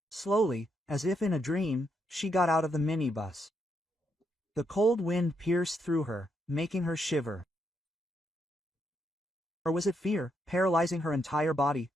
Slowly, as if in a dream, she got out of the minibus. The cold wind pierced through her, making her shiver. Or was it fear, paralyzing her entire body?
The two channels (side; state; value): both; normal; correlation 0.79